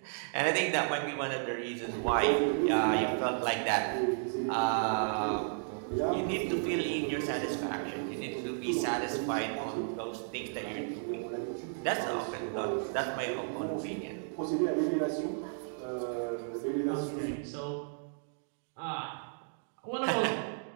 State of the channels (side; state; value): left; silent; digital silence